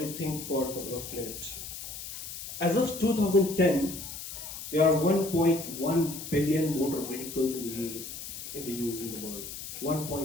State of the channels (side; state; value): left; noise; hiss, 9 dB below the sound